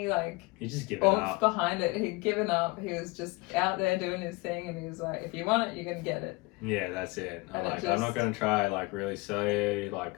like he just given oomph up behind it. He'd given up. He was just out there doing his thing, and he was like, if you want it, you're gonna get it. Yeah, that's it. I'm not gonna try like really sell you, like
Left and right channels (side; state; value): right; quieter; 24.7 dB